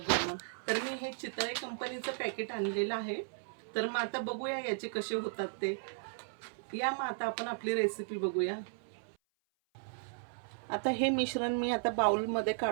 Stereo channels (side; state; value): left; silent; 54 dB below the other